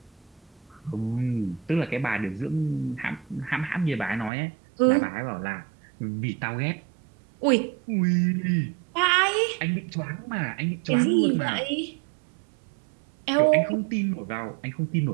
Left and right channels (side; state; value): left; drops out; at 4.3 s